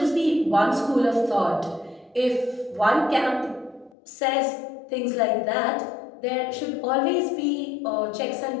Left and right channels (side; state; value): right; drops out; at 4.0 s